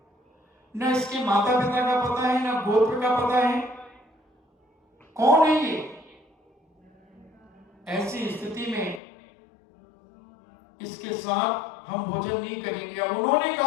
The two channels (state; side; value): drops out; right; at 9.0 s